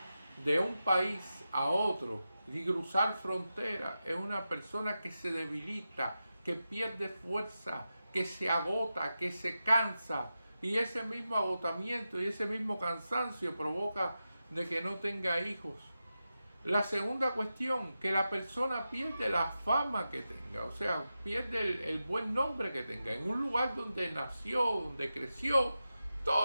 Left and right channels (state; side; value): inverted; both; correlation -0.91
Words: de un país a otro y cruzar frontera, es una persona que se debilita, que pierde fuerza, que se agota, que se cansa. Y ese mismo agotamiento y ese mismo cansancio provoca de que no tenga hijos. La segunda cuestión, que la persona pierde la fama que tenga, o sea, pierde el buen nombre que tenga. En un lugar donde nació, donde creció,